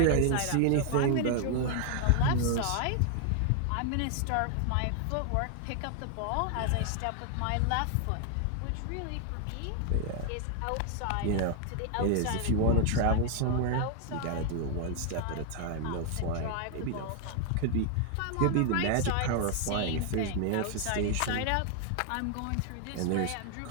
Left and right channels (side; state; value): both; different; correlation 0.00